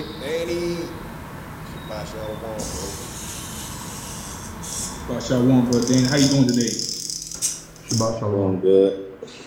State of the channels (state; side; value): identical; both; correlation 1.00